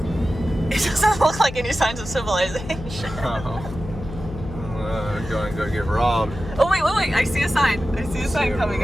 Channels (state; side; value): noise; left; hum, 11 dB below the sound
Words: It doesn't look like any signs of civilization. Going to go get robbed. Oh wait, I see a sign. I see a sign coming